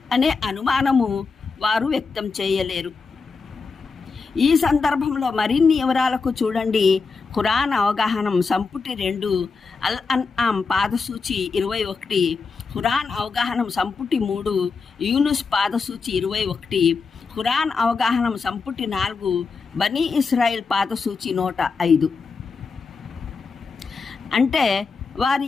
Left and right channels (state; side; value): quieter; right; 4.7 dB